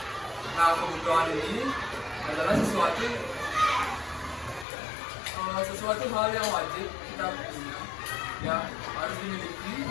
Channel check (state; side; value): drops out; right; at 4.7 s